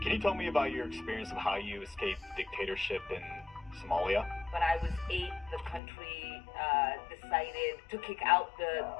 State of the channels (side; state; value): right; drops out; at 5.8 s